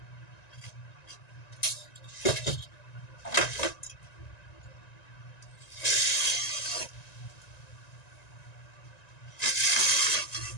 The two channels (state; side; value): late; right; 1.9 ms